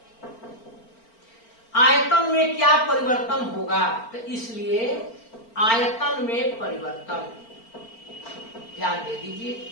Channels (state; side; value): late; right; 4.4 ms